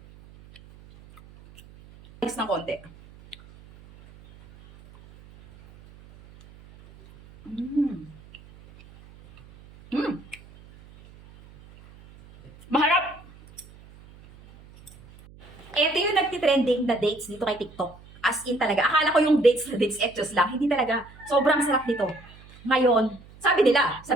Next ng konti. Maharap! Ito yung nagtitrending na dates dito kay TikTok. As in talaga. Akala ko yung dates na dates etchos lang. Hindi talaga. Sobrang sarap nito. Ngayon, sabi nila sa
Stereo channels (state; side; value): noise; right; hum, 23 dB below the sound